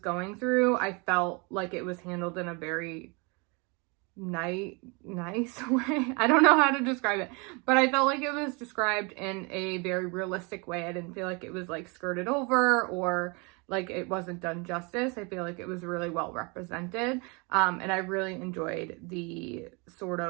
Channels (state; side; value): quieter; left; 30.3 dB